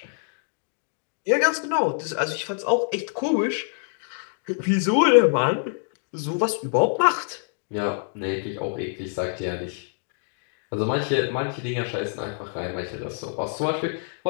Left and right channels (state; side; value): silent; right; 61 dB below the other